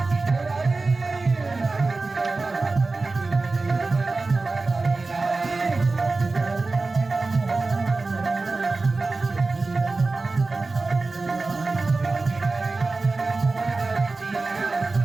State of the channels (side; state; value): left; quieter; 3.6 dB